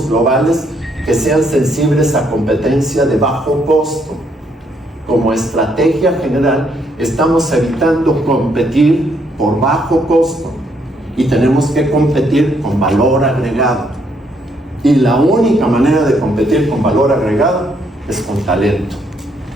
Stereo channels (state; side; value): normal; both; correlation 0.72